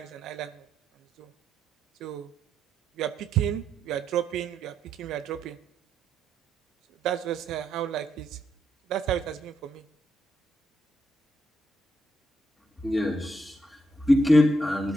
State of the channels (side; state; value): both; normal; correlation 0.78